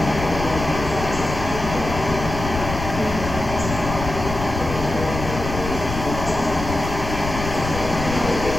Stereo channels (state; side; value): noise; left; rumble, 6 dB below the sound